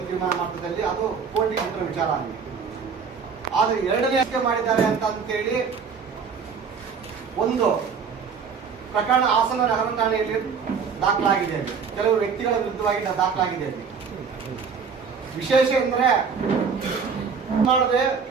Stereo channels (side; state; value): left; quieter; 6.0 dB